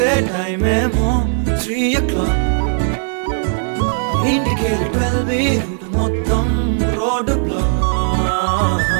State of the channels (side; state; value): left; silent; 64 dB below the other